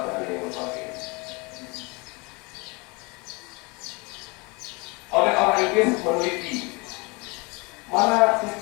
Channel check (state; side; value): quieter; right; 28.3 dB